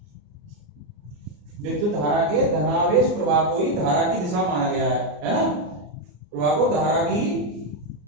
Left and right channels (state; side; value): late; left; 34 ms